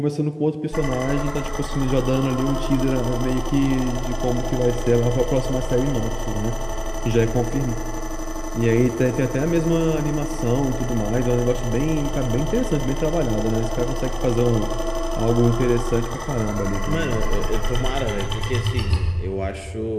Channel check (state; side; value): identical; both; correlation 1.00